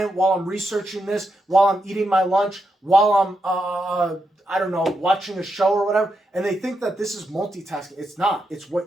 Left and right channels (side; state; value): both; normal; correlation 0.84